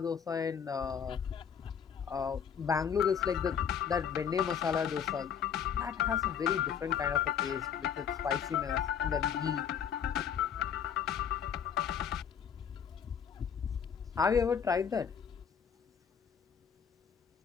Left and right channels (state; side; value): quieter; right; 7.7 dB